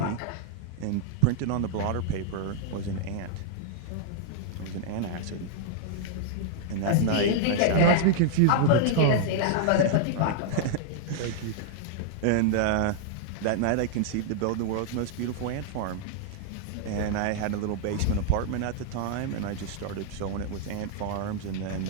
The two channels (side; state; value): both; different; correlation -0.01